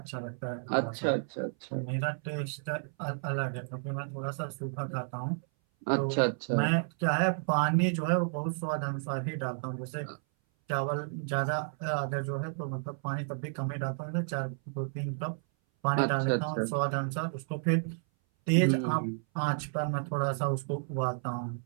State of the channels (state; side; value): silent; left; 57 dB below the other